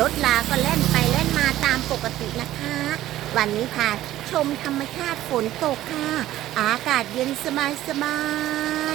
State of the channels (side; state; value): left; quieter; 14.2 dB